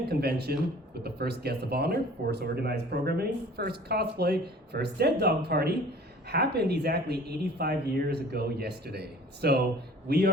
convention with the first guest of honor, first organized programming, first cosplay, first dead dog party, happened exactly 85 years ago yesterday. So we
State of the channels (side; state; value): both; normal; correlation 0.48